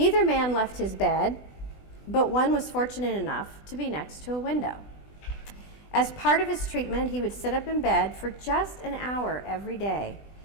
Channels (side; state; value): right; late; 20 ms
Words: man left his bed, but one was fortunate enough to be next to a window. As part of his treatment, he would sit up in bed for just an hour every day.